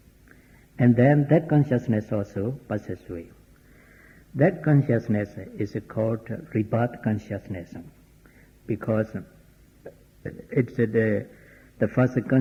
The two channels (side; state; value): both; identical; correlation 1.00